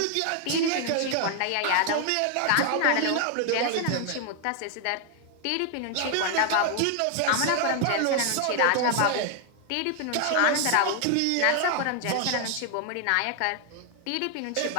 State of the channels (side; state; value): both; different; correlation 0.00